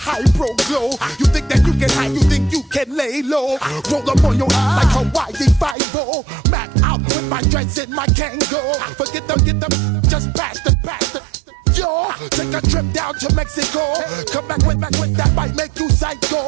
pro glow. You think that you can hide, you think you can lay low. Roll up on your ass like Hawaii 5-0. Mac out with my dreads and my Kango. Forget them, just pass the. Yo, take a trip down to Mexico. Come back with that might make you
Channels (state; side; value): drops out; left; at 5.8 s